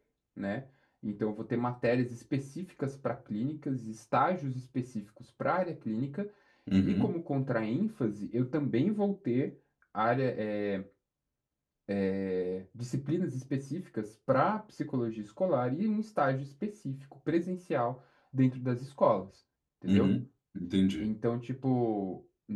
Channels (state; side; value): identical; both; correlation 1.00